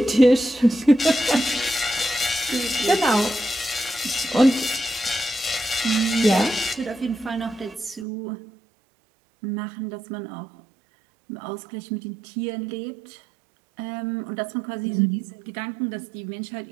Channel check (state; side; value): drops out; left; at 8.1 s